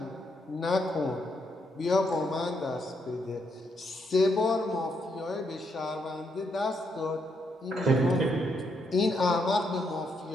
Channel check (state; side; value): normal; both; correlation 0.77